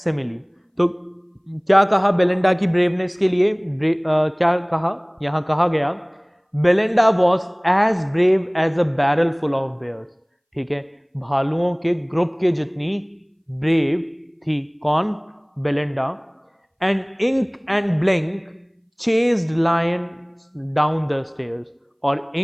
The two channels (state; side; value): identical; both; correlation 1.00